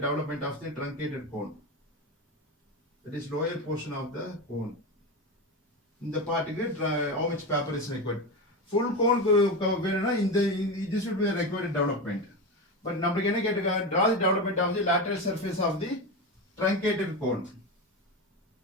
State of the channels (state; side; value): normal; both; correlation 0.19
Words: development of the truncated cone. That is lower portion of the cone. இந்த பார்ட்டுக்கு how much paper is required. Full cone வேணும்னா இந்த this should be a required development. But நமக்கு என்ன கேட்டிருக்காங்க, draw the development of the lateral surface of the truncated cone.